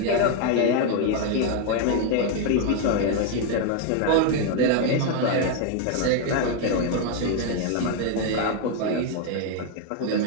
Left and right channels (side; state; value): both; different; correlation 0.01